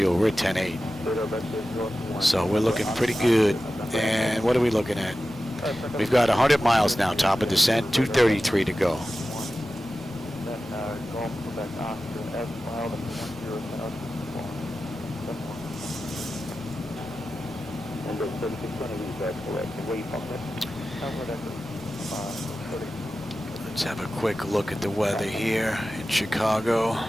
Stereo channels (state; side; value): normal; both; correlation 0.94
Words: We're at 10-8. So we're looking pretty good. And what are we looking at? We've got 100 miles now, top of descent, 233 to go. Let's have a quick look at the weather here in Chicago.